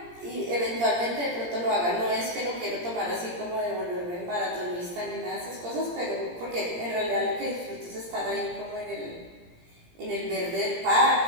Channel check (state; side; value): late; left; 17 ms